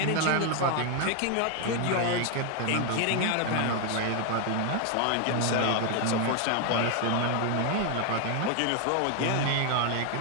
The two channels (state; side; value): different; both; correlation 0.01